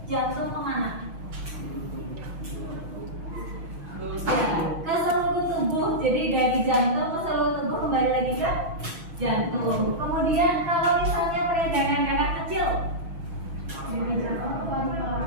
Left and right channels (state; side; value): late; left; 6.1 ms